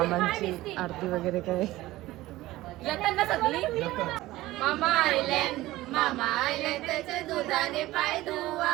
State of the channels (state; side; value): quieter; left; 17.3 dB